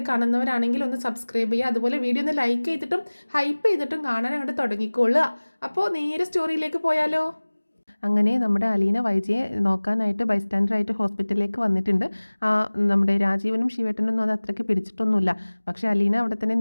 കാണുന്നവരാണെങ്കിൽ ഒന്ന് സബ്സ്ക്രൈബ് ചെയ്യുക. അതുപോലെ വീഡിയോ ഒന്ന് ലൈക്ക് ചെയ്തിട്ടും ഹൈപ്പ് ചെയ്തിട്ടും കാണാൻ അങ്ങോട്ട് തുടങ്ങിക്കൊള്ളുക. അപ്പോൾ നേരെ സ്റ്റോറിയിലേക്ക് പോയാലോ. അങ്ങനെ നമ്മുടെ അലീന വൈജയെ നോക്കാനായിട്ട് ബൈസ്റ്റാൻഡറായിട്ട് ഹോസ്പിറ്റലിലേക്ക് വന്നിട്ടുണ്ട്. നമ്മുടെ രാജീവനും ശിവേട്ടനൊന്നും അത് അത്രയ്ക്ക് പിടിച്ചിട്ടൊന്നുമില്ല. പക്ഷേ അലീന അവിടെ തന്നെ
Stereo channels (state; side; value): inverted; both; correlation -1.00